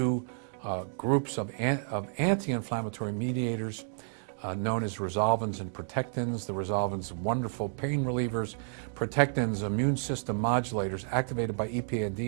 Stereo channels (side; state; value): left; silent; digital silence